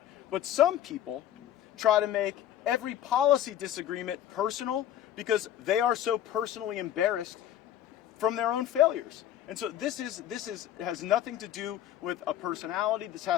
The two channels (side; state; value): right; quieter; 11.3 dB